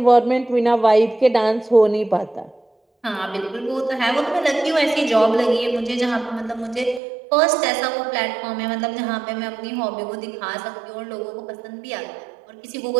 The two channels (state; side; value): drops out; left; at 7.0 s